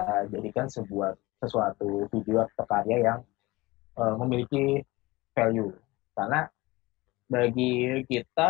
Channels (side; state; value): right; quieter; 21.0 dB